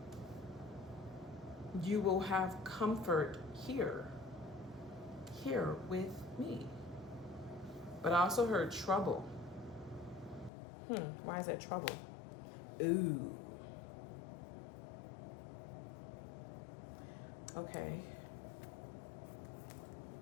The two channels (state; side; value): drops out; right; at 10.5 s